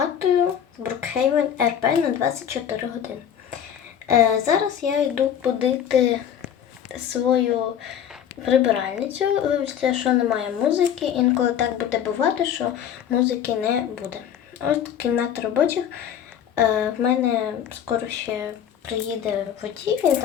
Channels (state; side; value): quieter; right; 9.2 dB